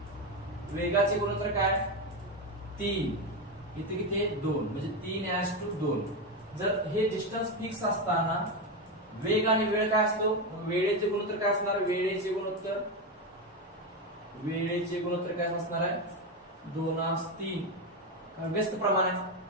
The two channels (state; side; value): normal; both; correlation 0.12